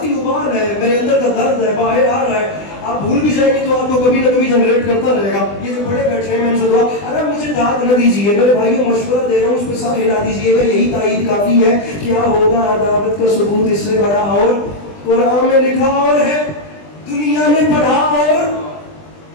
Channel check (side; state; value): right; late; 20 ms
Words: ابال ہے، میرے اندر کا درد ہے، باہر آ رہا ہے. آپ بھول بھی جائیں گے تو آپ کو کبھی نہ کبھی جنریٹ کرتا رہے گا. یہ جو بڑے بیٹھے ہیں میں ان سے دعا، اگر مجھے داد نہ دیجیے، میرے بھائیوں مشورہ دے رہا ہوں، اس پہ سب ہلا دیجیے گا، یہی تائید کافی ہے. کیا ہوگا عداوت کا ثبوت اس سے بڑا، اور قرآن میں لکھا اور ہے دنیا نے پڑھا. اور